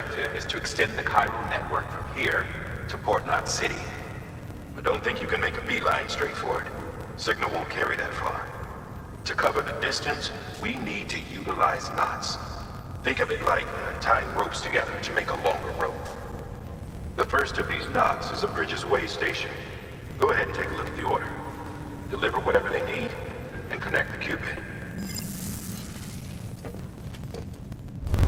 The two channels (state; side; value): identical; both; correlation 1.00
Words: is to extend the Cairo network from here to Port-2 City. But don't think you can make a beeline straight for it. Signal won't carry that far. To cover the distance, we need to utilize knots. Think of it like tying ropes together to make a longer rope. The first of these knots is a Bridges Way station. Go ahead and take a look at the order. Deliver whatever they need, and connect the Cupid.